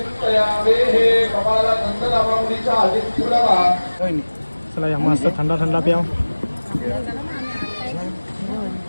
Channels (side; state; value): both; inverted; correlation -1.00